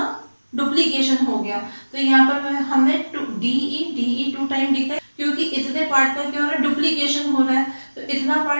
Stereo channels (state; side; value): inverted; both; correlation -1.00